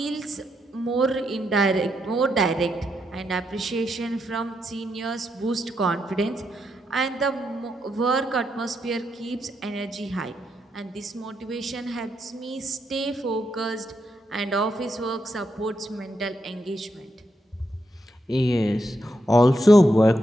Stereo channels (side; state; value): both; normal; correlation 0.81